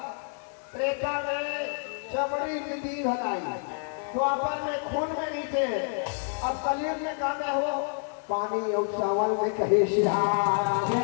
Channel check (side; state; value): right; silent; 59 dB below the other